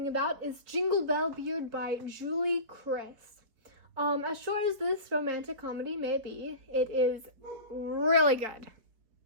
about is Jingle Bell Beard by Julie Kriss. As short as this romantic comedy may be, it is really good.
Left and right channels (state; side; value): late; left; 4.5 ms